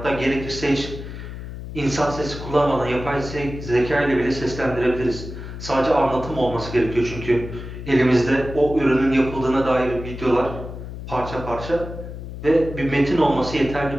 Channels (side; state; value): left; noise; hum, 10 dB below the sound